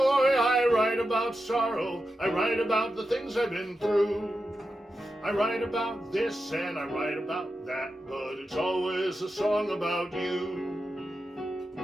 write about sorrow. I write about the things I've been through. I write about this and I write about that, but it's always a song about you.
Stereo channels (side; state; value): both; normal; correlation 0.90